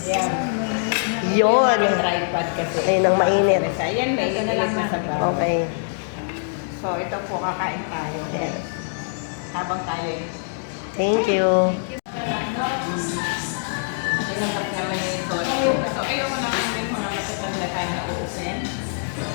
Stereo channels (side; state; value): right; silent; 63 dB below the other